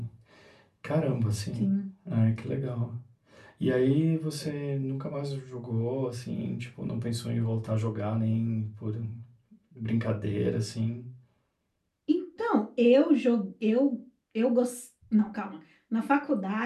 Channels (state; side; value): identical; both; correlation 1.00